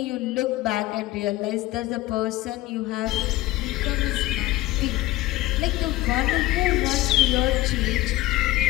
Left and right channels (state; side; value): quieter; right; 17.4 dB